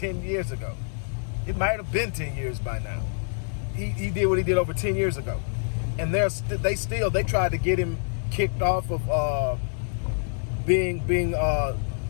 years ago. It might have been 10 years by now. He did what he did over 10 years ago. And they tried to get him kicked off of being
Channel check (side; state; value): right; silent; digital silence